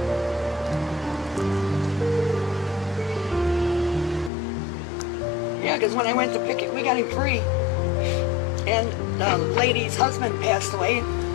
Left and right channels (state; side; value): drops out; right; at 4.3 s